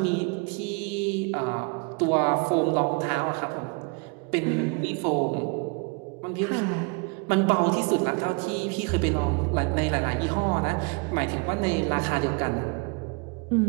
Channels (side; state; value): left; quieter; 31.0 dB